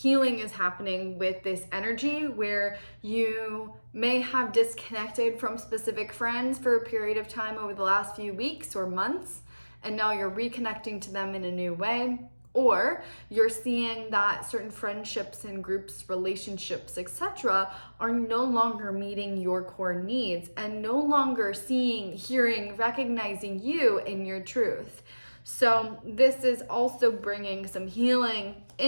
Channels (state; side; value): inverted; both; correlation -1.00